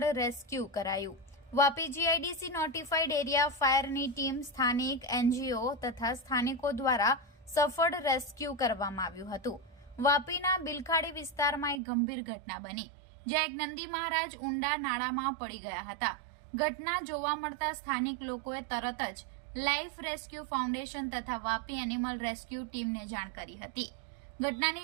રેસ્ક્યુ કરાયું। વાપી જીઆઈડીસી નોટિફાઈડ એરિયા ફાયરની ટીમ, સ્થાનિક એનજીઓ તથા સ્થાનિકો દ્વારા સફળ રેસ્ક્યુ કરવામાં આવ્યું હતું। વાપીના બિલખાડી વિસ્તારમાં એક ગંભીર ઘટના બની, જ્યાં એક નંદી મહારાજ ઊંડા નાળામાં પડી ગયા હતા। ઘટના જોવા મળતા સ્થાનિક લોકોએ તરત જ લાઈફ રેસ્ક્યુ ફાઉન્ડેશન તથા વાપી એનિમલ રેસ્ક્યુ ટીમને જાણ કરી હતી।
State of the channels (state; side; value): drops out; left; at 11.8 s